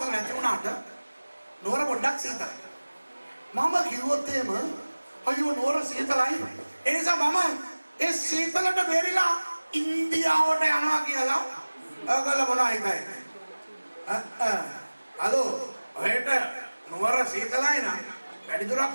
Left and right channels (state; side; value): inverted; both; correlation -1.00